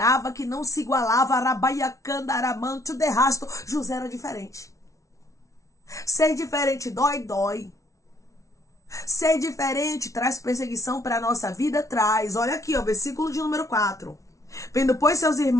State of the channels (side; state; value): right; late; 0.15 ms